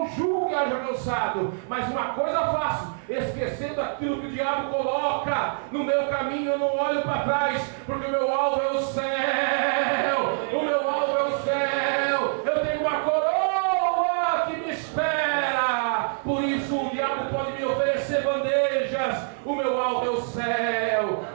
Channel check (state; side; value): silent; left; 58 dB below the other